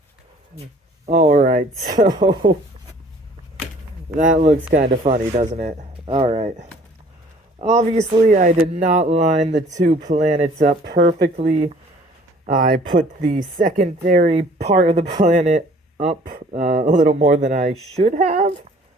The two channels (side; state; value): both; normal; correlation 0.54